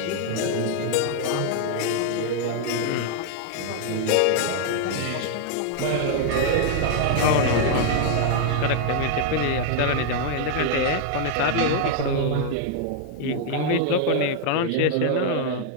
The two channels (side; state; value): both; different; correlation 0.00